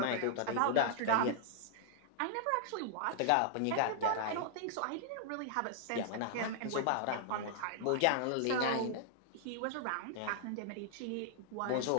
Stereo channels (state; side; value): different; both; correlation -0.01